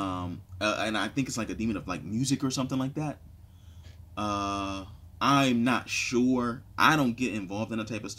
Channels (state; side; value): identical; both; correlation 1.00